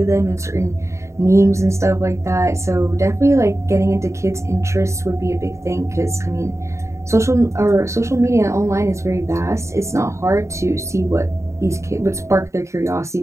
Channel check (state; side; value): late; left; 0.14 ms